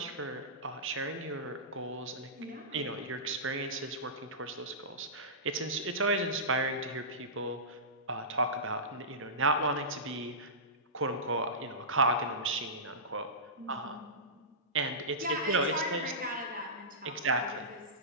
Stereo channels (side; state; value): both; normal; correlation -0.19